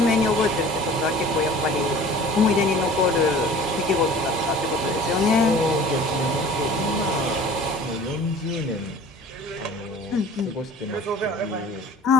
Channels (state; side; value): normal; both; correlation 0.45